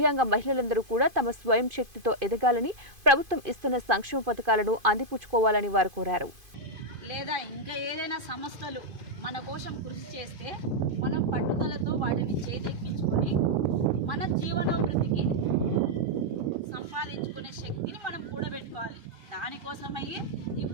మహిళలందరూ కూడా తమ స్వయం శక్తితో ఎదగాలని, ప్రభుత్వం ఇస్తున్న సంక్షేమ పథకాలను అందిపుచ్చుకోవాలని వారు కోరారు. లేదా ఇంకా ఏదైనా సంస్థలు మన కోసం కృషి చేస్తే మనం పట్టుదలతో వాటిని చేదెక్కించుకొని మన జీవనోభివృద్ధికి సంపాదించుకునే శక్తిని మనం కూడబెట్టుకోవాలి. దానికోసమయ్యే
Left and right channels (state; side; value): late; left; 2.5 ms